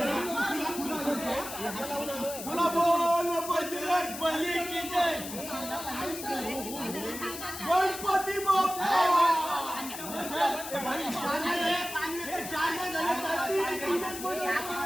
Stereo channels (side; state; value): left; noise; hiss, 9 dB below the sound